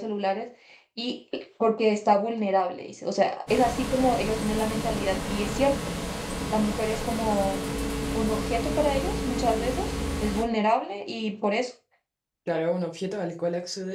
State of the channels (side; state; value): both; identical; correlation 1.00